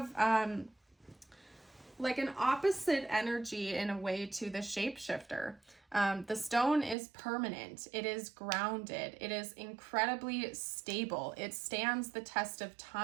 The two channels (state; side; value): drops out; left; at 7.0 s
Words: like an opposite energy in a way to the shapeshifter. The stone is permanent. It is grounded. It is incredibly stable. It stands the test of